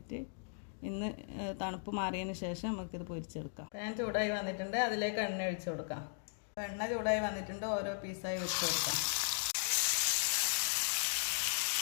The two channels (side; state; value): right; silent; digital silence